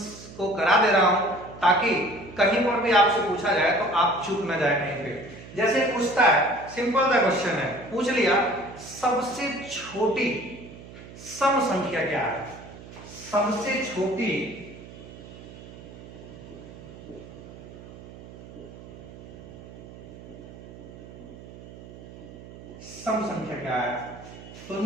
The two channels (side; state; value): right; noise; hum, 16 dB below the sound